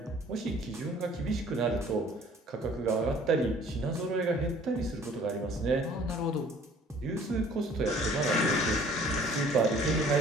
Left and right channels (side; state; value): both; normal; correlation 0.54